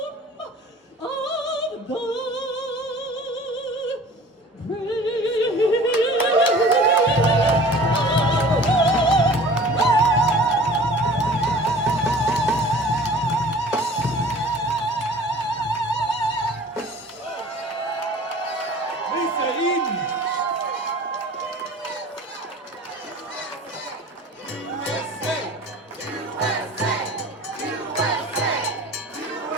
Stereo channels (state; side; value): normal; both; correlation 0.45